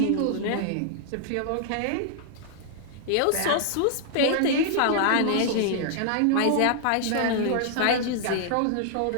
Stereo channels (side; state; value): both; different; correlation -0.01